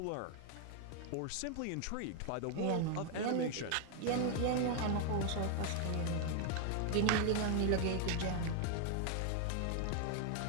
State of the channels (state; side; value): different; both; correlation 0.00